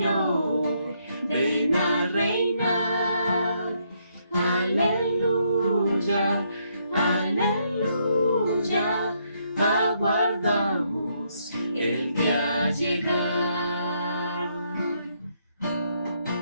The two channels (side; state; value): both; inverted; correlation -0.74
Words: ven a reinar. Aleluya, aleluya, aguardamos el día llegar.